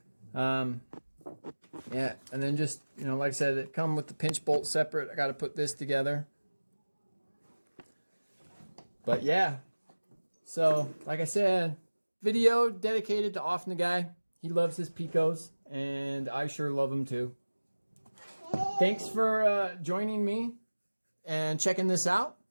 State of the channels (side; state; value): both; inverted; correlation -1.00